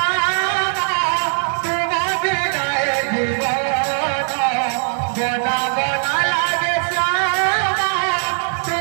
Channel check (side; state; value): left; silent; digital silence